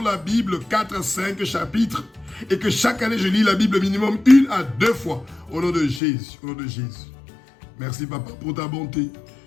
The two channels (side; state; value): right; drops out; at 6.0 s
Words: la Bible, 4 à 5 chapitres. Et que chaque année, je lis la Bible minimum 1 à 2 fois. Au nom de Jésus, au nom de Jésus. Merci papa pour ta bonté.